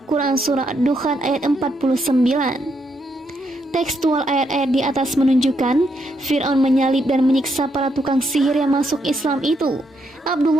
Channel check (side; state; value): both; normal; correlation 0.77